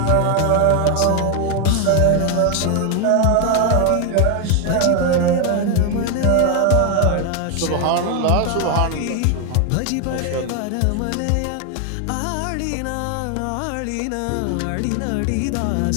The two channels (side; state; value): both; different; correlation 0.01